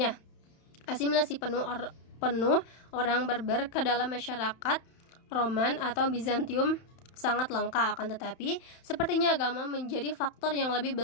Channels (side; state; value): right; late; 31 ms